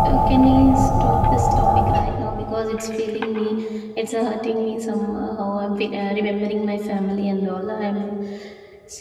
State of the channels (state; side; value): identical; both; correlation 1.00